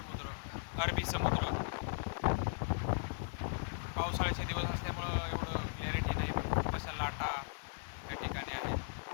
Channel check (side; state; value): right; silent; digital silence